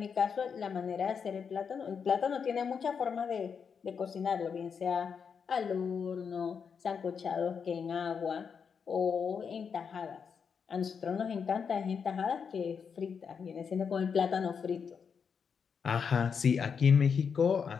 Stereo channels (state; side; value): quieter; right; 6.4 dB